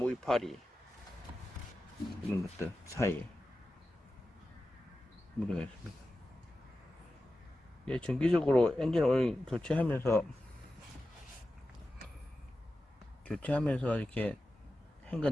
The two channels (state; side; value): normal; both; correlation 0.93